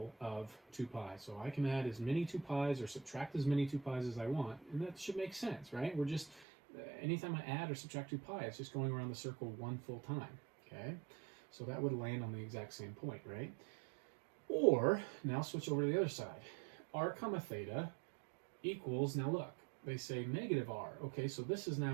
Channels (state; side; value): drops out; left; at 6.5 s